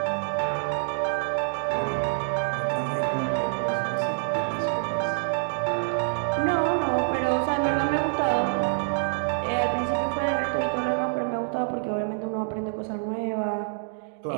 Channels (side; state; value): left; silent; digital silence